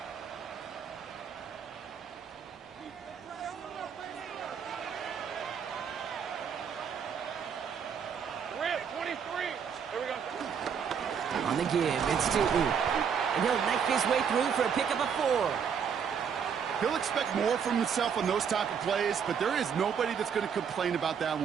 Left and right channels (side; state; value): left; quieter; 7.2 dB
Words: On the give, it's Tootin. And he'll knife his way through for a pickup of 4. He'll expect more from himself on those type of plays, but there is nobody that's going to complain about that